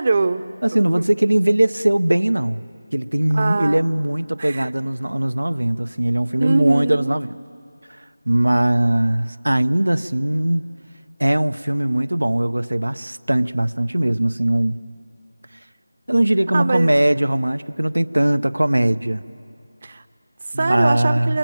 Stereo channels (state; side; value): inverted; both; correlation -0.99